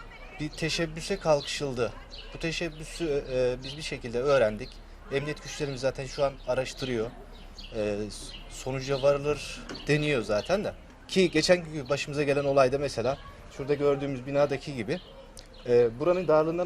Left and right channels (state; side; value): identical; both; correlation 1.00